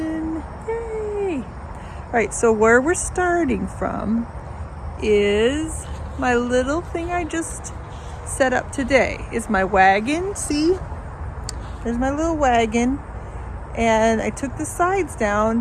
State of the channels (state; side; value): identical; both; correlation 1.00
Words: Yay! Alright, so where we're starting from is my little thing I just set up today. Is my wagon. See? There's my little wagon. And I took the sides down